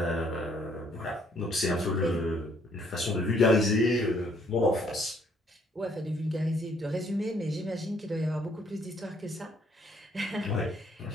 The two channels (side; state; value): both; normal; correlation 0.66